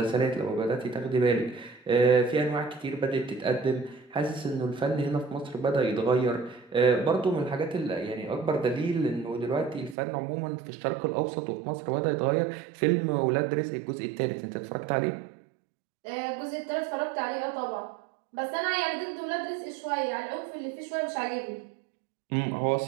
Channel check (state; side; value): drops out; left; at 10.0 s